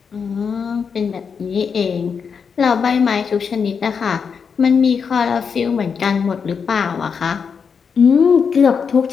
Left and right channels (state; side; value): quieter; right; 6.2 dB